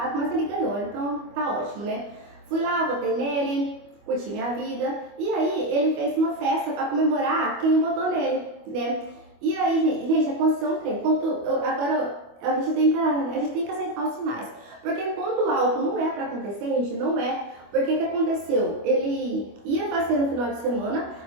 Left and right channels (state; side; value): late; left; 25 ms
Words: mas ele ganhou, então tá ótimo, né? Fui lá, votei nele, curti minha vida e aí ele fez uma festa para comemorar quem votou nele, né? E aí, gente, aconteceu um trem. Agora a gente tem que aceitar os sinais. Porque quando algo não é para acontecer, gente, não é. Porque o que aconteceu? Ele ia fazer no final de semana,